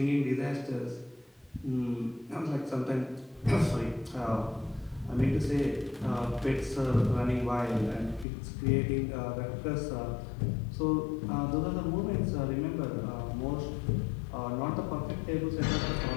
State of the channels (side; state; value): right; drops out; at 8.2 s